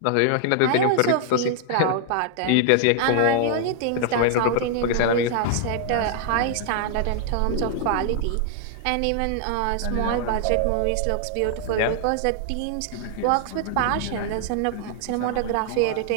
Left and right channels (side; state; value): both; different; correlation 0.00